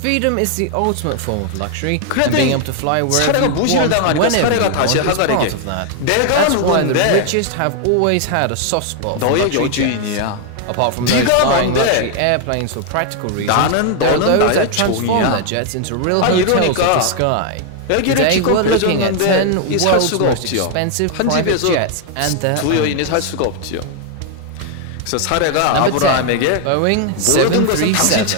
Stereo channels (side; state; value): both; different; correlation 0.00